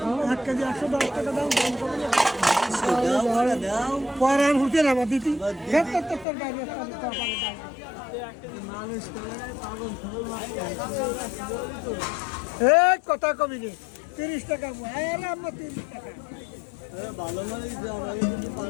1 কেজি 110 টাকা দাম। পরে আর হুঁকে না দিতি। তোর বাইরে কথা কবি রে 30 টাকা পোয়া। আরে আমরা 30 টাকা।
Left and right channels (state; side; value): drops out; right; at 6.2 s